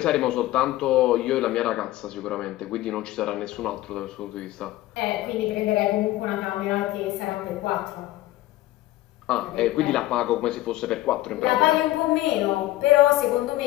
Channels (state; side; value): quieter; right; 16.3 dB